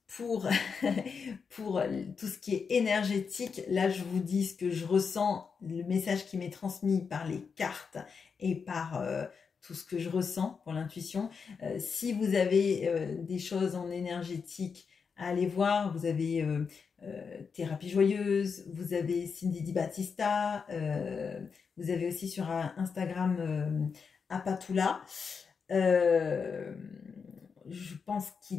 pour, pour tout ce qui est énergétique. Là, je vous dis ce que je ressens, le message qui m'est transmis par les cartes et par tout ce que je ressens pour l'intuition. Si vous avez des choses en énergétique à aller voir, vous avez Thérapie Joyeuse, vous avez Cindy Di Battista, vous avez aussi sur Instagram Apatula. Je pense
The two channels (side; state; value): right; quieter; 5.8 dB